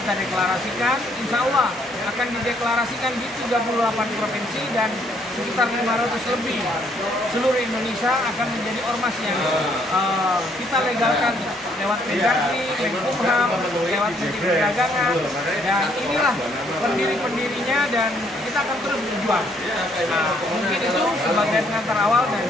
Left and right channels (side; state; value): both; normal; correlation 0.68